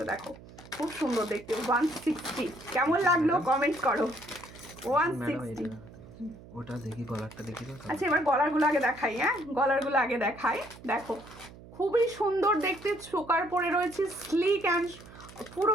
দেখো খুব সুন্দর দেখতে 160। কেমন লাগলো কমেন্ট করো। 160। ওটা দেখি, গলারটা দেখি। আচ্ছা এবার গলারগুলো আগে দেখাই, হ্যাঁ গলারগুলো আগে দেখাই। দেখো খুবই সুন্দর দেখতে, চোকার পরে রয়েছে স্লিক অ্যান্ড পুরো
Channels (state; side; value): noise; right; hum, 19 dB below the sound